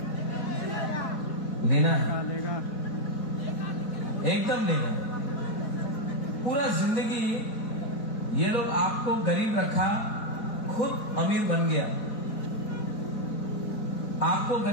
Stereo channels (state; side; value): late; right; 4.4 ms